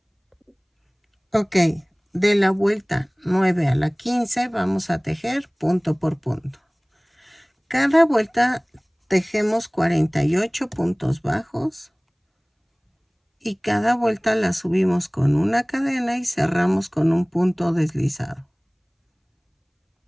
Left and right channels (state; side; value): identical; both; correlation 1.00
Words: Ok, de la vuelta 9 a la 15 vamos a tejer punto por punto. Cada vuelta tejemos 48 puntos bajos y cada vuelta la subimos con una cadena y cerramos con un punto deslizado.